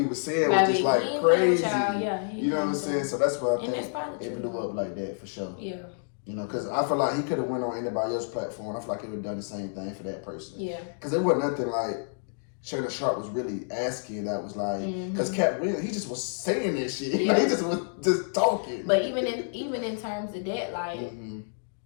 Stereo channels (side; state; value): right; silent; digital silence